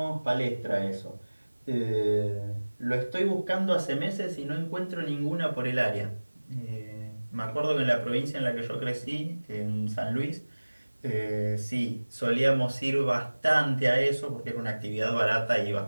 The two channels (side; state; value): both; inverted; correlation -1.00